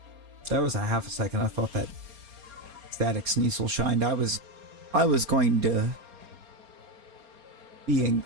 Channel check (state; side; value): late; left; 4.3 ms